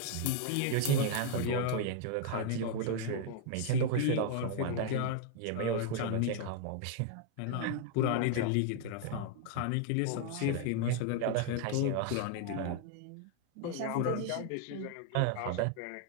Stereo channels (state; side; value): different; both; correlation 0.00